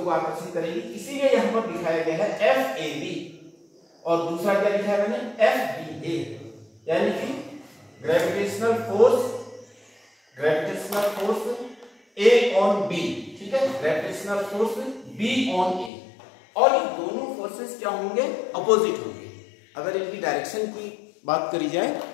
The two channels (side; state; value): right; drops out; at 15.9 s